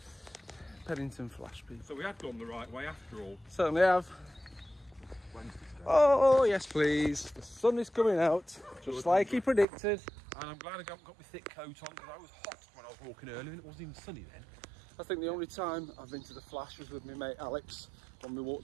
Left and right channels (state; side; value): drops out; left; at 9.7 s